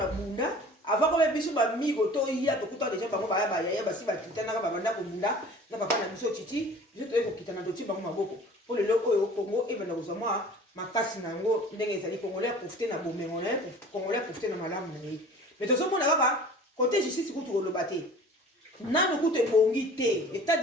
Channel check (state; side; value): normal; both; correlation 0.44